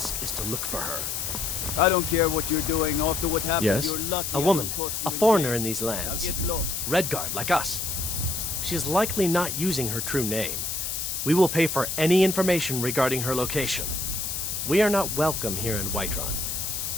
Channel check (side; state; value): left; noise; hiss, 3 dB below the sound